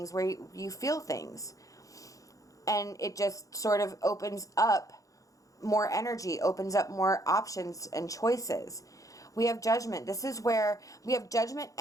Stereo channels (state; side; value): late; right; 0.16 ms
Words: where you feel things. And it just sort of opens up more energy, opens up more options and choices. We have Judgment. This is where we have Judgment